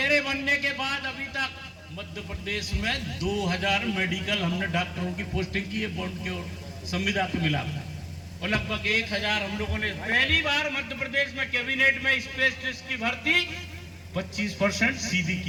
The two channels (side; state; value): both; identical; correlation 1.00